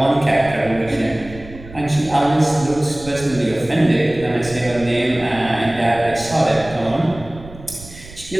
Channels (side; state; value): right; noise; rumble, 17 dB below the sound